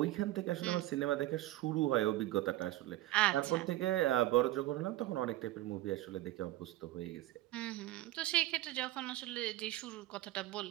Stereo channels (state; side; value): quieter; left; 15.9 dB